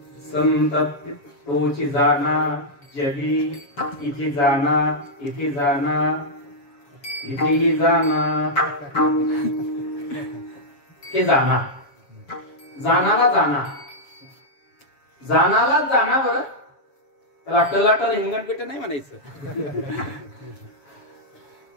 संत तोची जाना जगी, इथे जाना, इथे जाना, इथेही जाना. हे जाना, जानाला जाना, जानाला जाना. बरं त्याला टलाटल हिंगणपेट नाही म्हणायचं.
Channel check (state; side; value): late; right; 7.2 ms